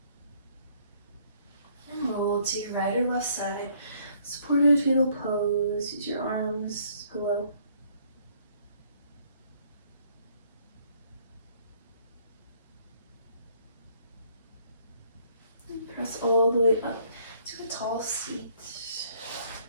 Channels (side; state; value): both; inverted; correlation -0.64